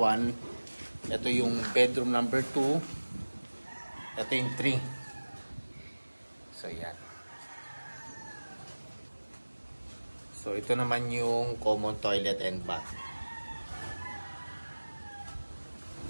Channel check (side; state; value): both; inverted; correlation -1.00